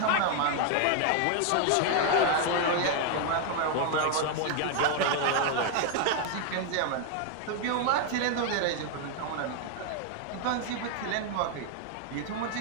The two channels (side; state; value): both; different; correlation 0.00